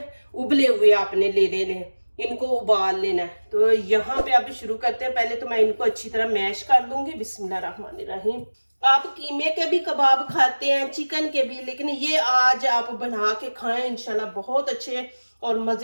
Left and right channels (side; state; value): both; inverted; correlation -1.00